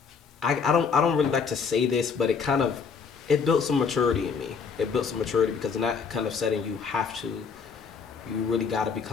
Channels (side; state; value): right; quieter; 5.8 dB